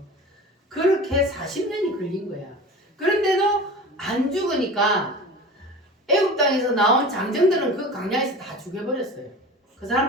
그렇게 40년이 걸린 거야. 그런데도 안 죽으니까 애굽 땅에서 나온 장정들은 그 광야에서 다 죽여버렸어요. 그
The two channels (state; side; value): normal; both; correlation 0.35